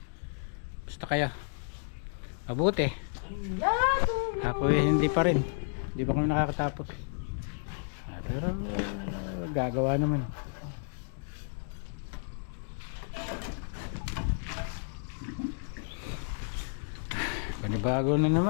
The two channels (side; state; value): right; silent; digital silence